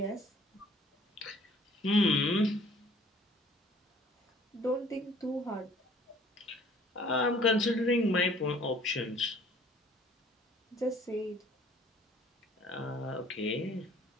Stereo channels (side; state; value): both; normal; correlation 0.55